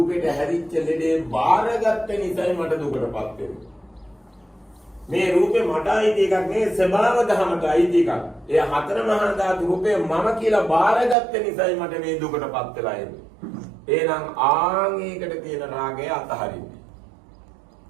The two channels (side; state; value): left; drops out; at 11.2 s